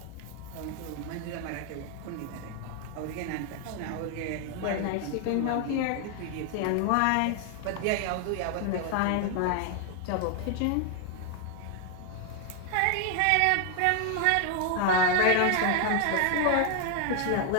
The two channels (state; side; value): different; both; correlation 0.00